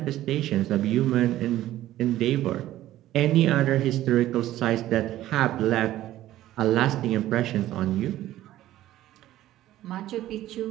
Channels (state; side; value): quieter; left; 14.2 dB